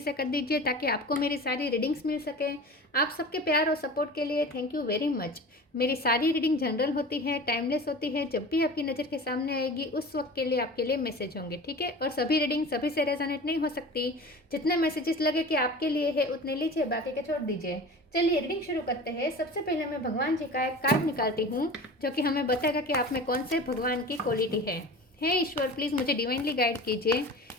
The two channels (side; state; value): both; normal; correlation 0.36